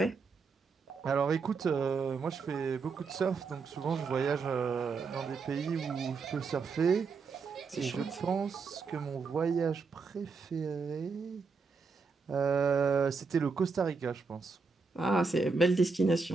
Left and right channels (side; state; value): left; quieter; 4.7 dB